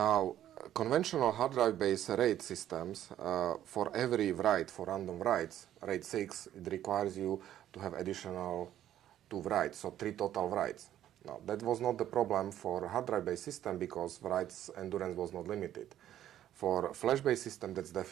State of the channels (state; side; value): quieter; left; 11.8 dB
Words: conventional hard drive based RAID systems, for every write, for random writes, RAID 6, it requires you to have additional 2 writes, so 3 total writes. Now, that was not the problem for hard drive based system because writes endurance was not limited. For flash based system, that's